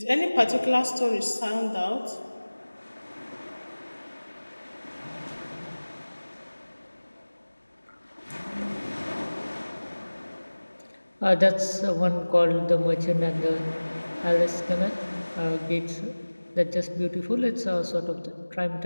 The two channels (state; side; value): inverted; both; correlation -1.00